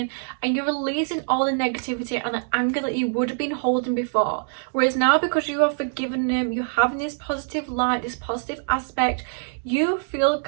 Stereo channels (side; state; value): left; silent; digital silence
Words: and you're releasing all the negativity and the anger that you would have been holding before. Whereas now, because you are forgiving them, you're having this positive light, this positive aspect, you feel